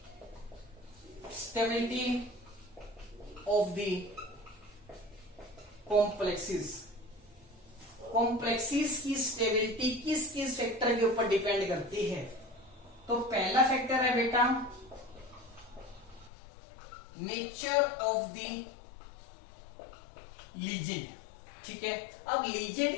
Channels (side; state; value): right; drops out; at 16.3 s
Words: stability of the complexes। Complexes की स्टेबिलिटी किस किस फैक्टर के ऊपर डिपेंड करती है? तो पहला फैक्टर है बेटा नेचर ऑफ द लीजेंड। ठीक है, अब लीजेंड